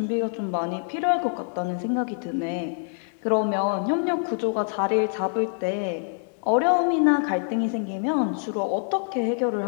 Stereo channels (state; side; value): silent; right; digital silence